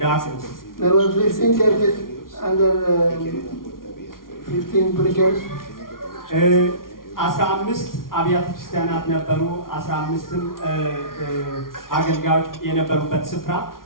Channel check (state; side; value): late; right; 0.91 ms